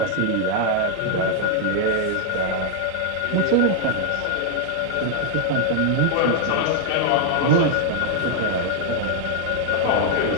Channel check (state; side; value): different; both; correlation 0.00